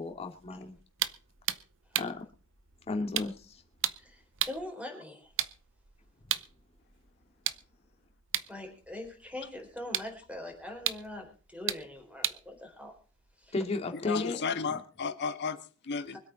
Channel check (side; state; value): both; normal; correlation 0.17